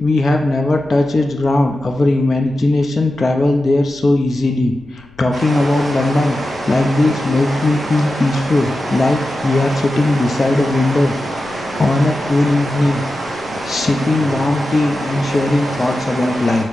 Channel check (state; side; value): noise; left; rumble, 25 dB below the sound